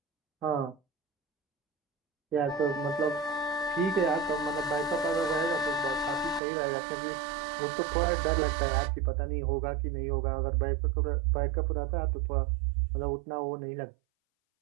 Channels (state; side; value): drops out; left; at 6.4 s